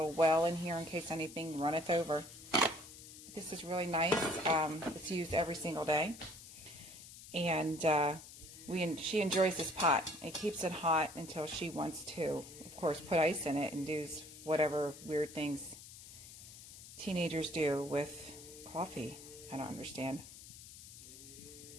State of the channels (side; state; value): left; noise; hiss, 16 dB below the sound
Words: well in here in case anything runneth over. This is really nice. It's used every single day, and she enjoys this pot. It keeps it hot until she wants to, of course, put ice in it and do whatever weird things teenagers do with coffee. I don't understand.